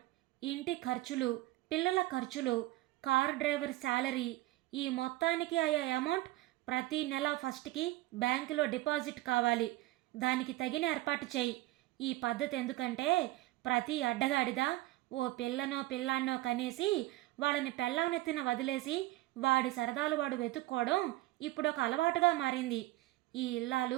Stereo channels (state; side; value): quieter; left; 17.7 dB